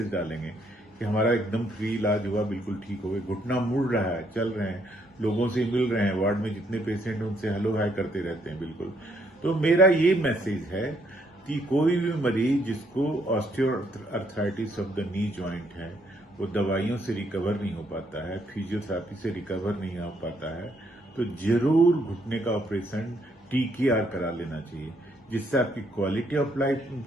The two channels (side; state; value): both; normal; correlation 0.71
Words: डालेंगे कि हमारा एकदम फ्री इलाज हुआ, बिल्कुल ठीक हो गए, घुटना मुड़ रहा है, चल रहे हैं, लोगों से मिल रहे हैं, वार्ड में जितने पेशेंट हैं उनसे हेलो हाय करते रहते हैं बिल्कुल। तो मेरा ये मैसेज है कि कोई भी मरीज जिसको osteoarthritis of the knee joint है, वो दवाइयों से रिकवर नहीं हो पाता है, फिजियोथेरेपी से रिकवर नहीं हो पाता है, तो जरूर घुटने का ऑपरेशन TKR करा लेना चाहिए, जिससे आपकी क्वालिटी ऑफ लाइफ